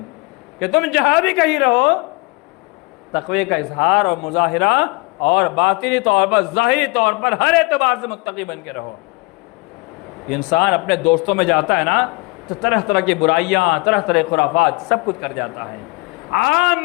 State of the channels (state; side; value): quieter; right; 25.7 dB